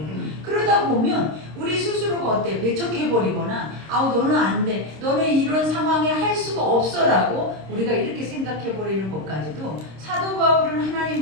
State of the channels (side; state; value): left; late; 26 ms